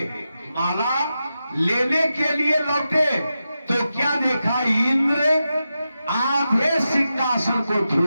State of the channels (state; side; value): inverted; both; correlation -0.90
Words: माला लेने के लिए लौटे तो क्या देखा, इंद्र आधे सिंहासन को